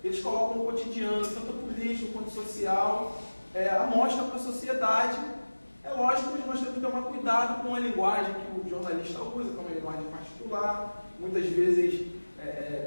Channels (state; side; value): inverted; both; correlation -1.00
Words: eles colocam o cotidiano, tanto político quanto social, a mostra para a sociedade. É lógico que nós temos que tomar cuidado com a linguagem que o jornalista usa, que é uma linguagem particular, muitas vezes